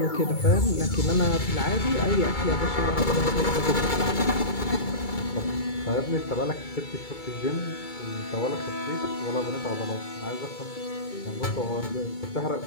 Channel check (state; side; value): late; right; 2.3 ms